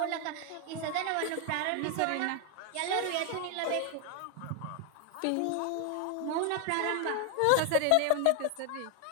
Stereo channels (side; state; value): both; different; correlation 0.01